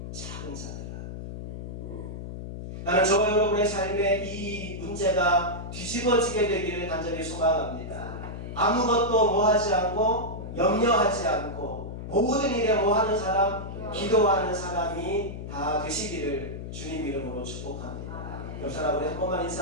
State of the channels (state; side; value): noise; left; hum, 8 dB below the sound